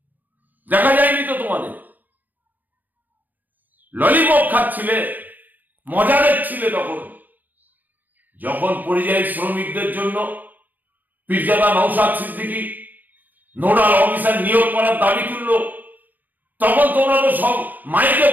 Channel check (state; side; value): late; left; 0.084 ms